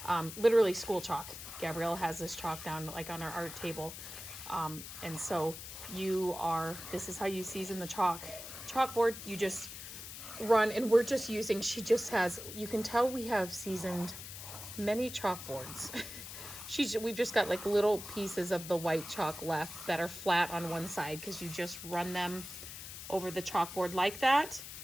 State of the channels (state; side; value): noise; left; hiss, 10 dB below the sound